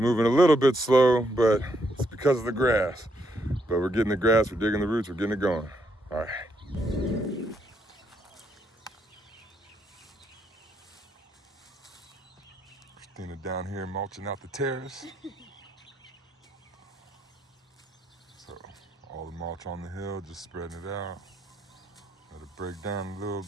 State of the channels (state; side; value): normal; both; correlation 0.76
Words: a little bit slow, but it's because of the grass. But we're getting the grass, we're digging the roots, we're getting it going. All right. Christina down here mulching out the terrace. So all the mulch on the hill, just spreading it out. Let it break down a little